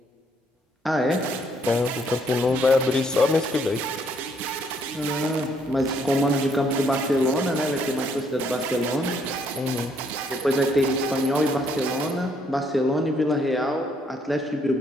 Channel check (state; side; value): normal; both; correlation 0.69